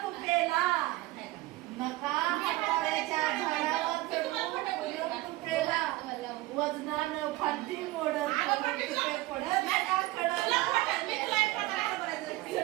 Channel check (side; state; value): left; quieter; 18.6 dB